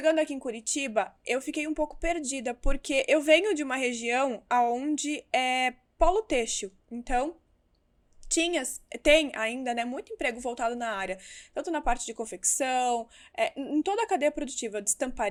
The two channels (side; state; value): both; identical; correlation 1.00